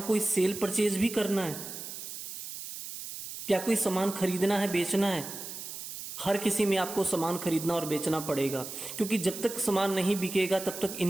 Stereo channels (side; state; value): right; noise; hiss, 9 dB below the sound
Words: कोई सेल परचेज भी करना है, क्या कोई सामान खरीदना है, बेचना है। हर किसी में आपको सामान खरीदना और बेचना पड़ेगा, क्योंकि जब तक सामान नहीं बिकेगा तब तक